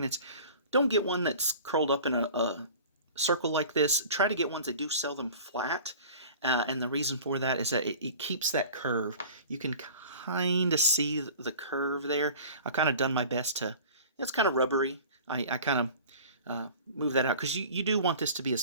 don't get one that's curled up in a circle like this. Try to get ones that do sell them flat. And the reason for that is that it keeps that curve. You can kind of see the curve there. I've kind of done my best to... It's kind of rubbery. I kind of move that out because you do want this to be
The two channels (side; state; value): both; inverted; correlation -0.42